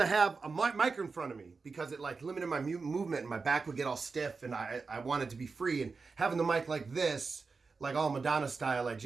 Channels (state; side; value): quieter; left; 4.5 dB